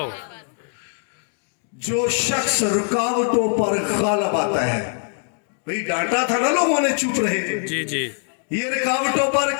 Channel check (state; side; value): silent; right; 59 dB below the other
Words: जो शख्स रुकावटों पर गालिब आता है, भाई डांटा था ना लोगों ने, चुप रहे थे। जी जी। ये रुकावटों पर